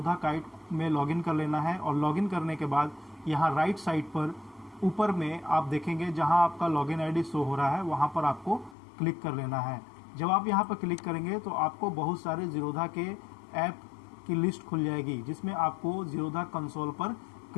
काइट में लॉगिन कर लेना है और लॉगिन करने के बाद यहाँ राइट साइड पर ऊपर में आप देखेंगे जहाँ आपका लॉगिन आईडी शो हो रहा है, वहाँ पर आपको क्लिक कर लेना है। जब आप यहाँ पर क्लिक करेंगे तो आपको बहुत सारे जीरोधा के ऐप की लिस्ट खुल जाएगी, जिसमें आपको जीरोधा कंसोल पर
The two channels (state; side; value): drops out; right; at 8.8 s